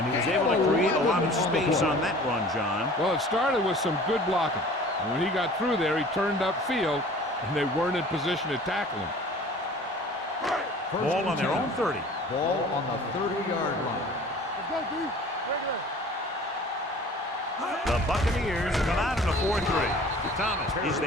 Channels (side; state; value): both; normal; correlation 0.46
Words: he was able to create a lot of space on that run, John. Well, it started with some good blocking. And when he got through there, he turned upfield, and they weren't in position to tackle him. Ball on their own 30. Ball on the 30-yard line. Let's go, D. Regular. The Buccaneers come out in a 4-3. Thomas is